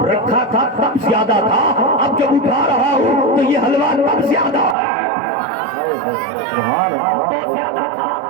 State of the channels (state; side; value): drops out; left; at 4.8 s